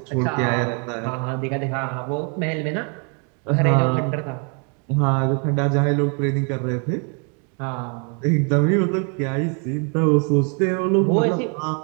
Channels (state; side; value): quieter; left; 37.9 dB